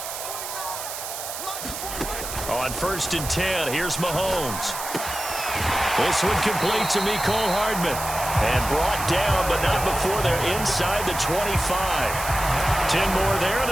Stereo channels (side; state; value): right; noise; hiss, 7 dB below the sound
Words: On first and 10, here's Mahomes. This one complete to Mecole Hardman. And brought down, but not before they're inside the 25. 10 more there and